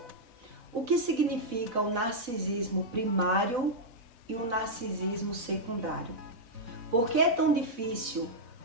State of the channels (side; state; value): left; late; 4.0 ms